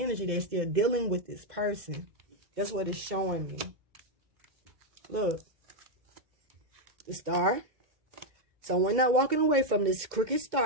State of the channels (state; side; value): late; left; 2.2 ms